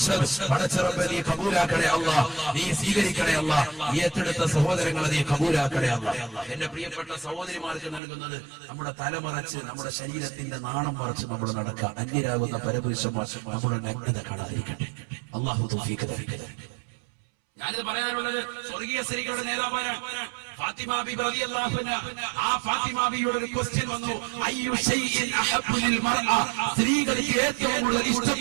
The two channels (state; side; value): drops out; left; at 8.0 s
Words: പടച്ചറബ്ബേ, നീ കബൂലാക്കണേ അല്ലാഹ്, നീ സ്വീകരിക്കണേ അല്ലാഹ്. ഈ ഏറ്റെടുത്ത സഹോദരങ്ങളെ നീ കബൂലാക്കണേ അല്ലാഹ്. എന്റെ പ്രിയപ്പെട്ട സഹോദരിമാർക്ക് നൽകുന്നത് നമ്മുടെ തലമറച്ച് നമ്മുടെ ശരീരത്തിന്റെ നാണം മറച്ച് നമ്മൾ നടക്കുക. അന്യരാകുന്ന പരപുരുഷന്മാർ നമ്മുടെ നഗ്നത കാണാതിരിക്കട്ടെ. അല്ലാഹു തൗഫീഖ് തരട്ടെ. ഞാനിത് പറയാനുള്ളത് സ്വർഗീയ സ്ത്രീകളുടെ നേതാവാണ് ഫാത്തിമ ബീബി റളിയല്ലാഹു അൻഹ. ആ ഫാത്തിമ ബീവിയുടെ ഒരു ക്വസ്റ്റ്യൻ വന്നു, അയ്യു ഷൈഇൻ അഹബ്ബു ലിൽ മർഅ, സ്ത്രീകൾക്ക് ഏറ്റവും കൂടുതൽ